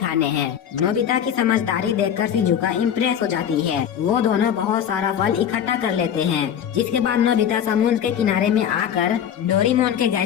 हैं। नोबिता की समझदारी देखकर शिजुका इम्प्रेस हो जाती है। वो दोनों बहुत सारा फल इकट्ठा कर लेते हैं, जिसके बाद नोबिता समुद्र के किनारे में आकर डोरेमोन के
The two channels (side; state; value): right; quieter; 9.1 dB